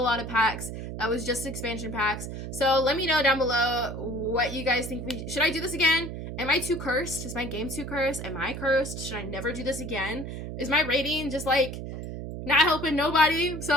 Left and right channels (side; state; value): right; noise; hum, 7 dB below the sound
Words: of packs that was just expansion packs. So let me know down below what you guys think. Should I do this again? Am I too cursed? Is my game too cursed? Am I cursed? Should I never do this again? Is my rating just like not helping nobody?